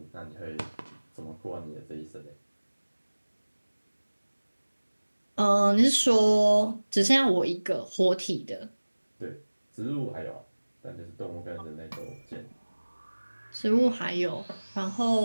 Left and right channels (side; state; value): both; inverted; correlation -1.00